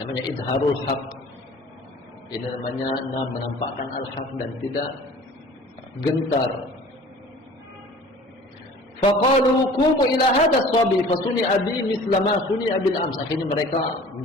idharul haq. Ini namanya menampakkan al-haq dan tidak gentar. Faqalu qumu ila hadha as-sabi fasuni abi misla ma suni abil ams. Akhirnya mereka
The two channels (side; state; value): both; normal; correlation 0.46